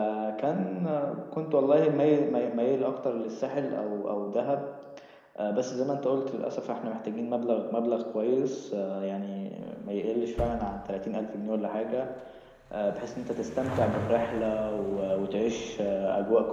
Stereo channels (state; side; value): identical; both; correlation 1.00